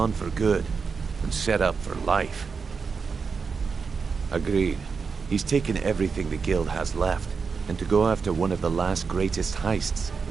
for good and set up for life. Agreed. He's taken everything the guild has left, and to go after one of the last greatest heists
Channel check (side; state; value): left; quieter; 5.3 dB